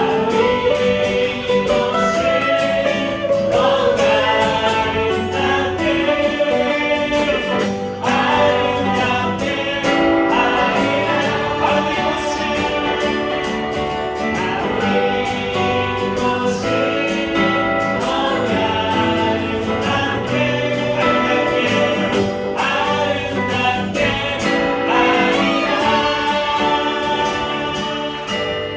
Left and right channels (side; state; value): both; identical; correlation 1.00